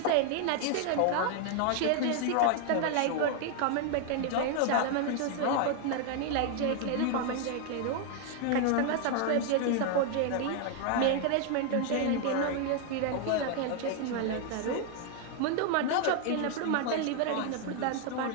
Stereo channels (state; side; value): different; both; correlation 0.00